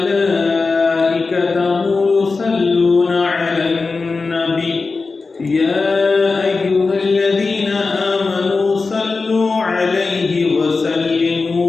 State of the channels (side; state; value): right; quieter; 4.1 dB